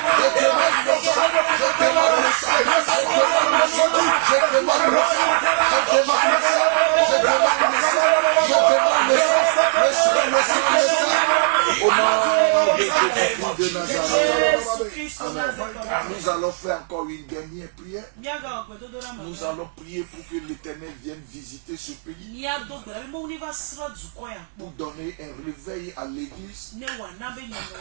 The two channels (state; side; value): silent; left; 64 dB below the other